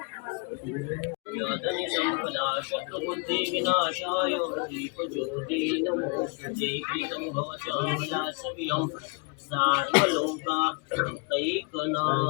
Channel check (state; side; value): quieter; right; 32.8 dB